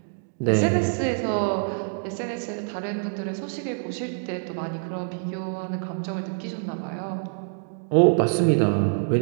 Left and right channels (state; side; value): silent; left; digital silence